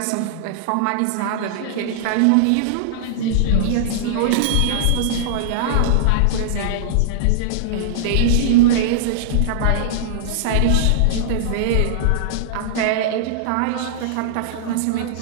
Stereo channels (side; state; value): both; different; correlation -0.02